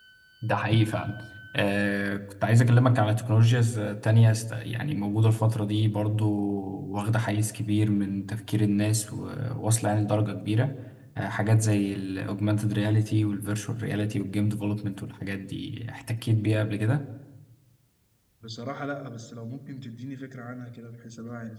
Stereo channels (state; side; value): identical; both; correlation 1.00